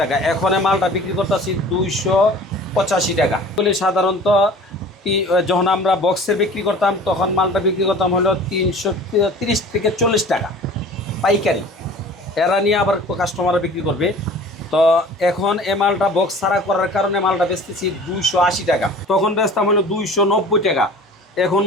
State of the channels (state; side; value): normal; both; correlation 0.44